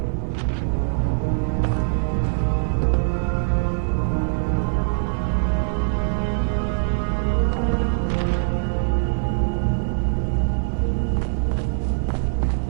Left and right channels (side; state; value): left; silent; digital silence